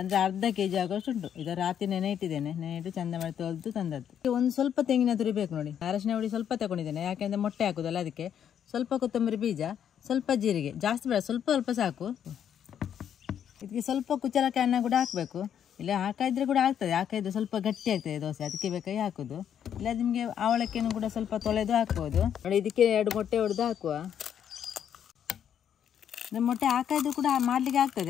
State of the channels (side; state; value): right; quieter; 9.1 dB